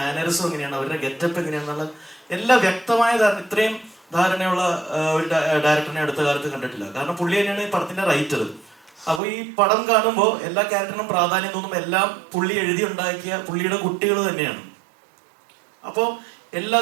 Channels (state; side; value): drops out; left; at 9.2 s